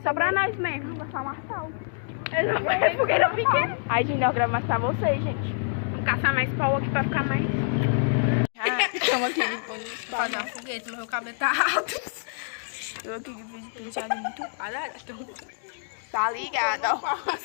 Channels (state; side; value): silent; right; digital silence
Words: pra nós mesmo. Vai falar sal. Não vai ser fogueira pequena. Aí, gente, nós gravamos mais pra vocês, gente. Vamos caçar mais pau aqui pra ficar mais. Estamos aqui pra fazer uma fogueira, mas meu cabelo tá alto. Eu aqui que fiz penteado muito quadrado. Tá ligado, ó.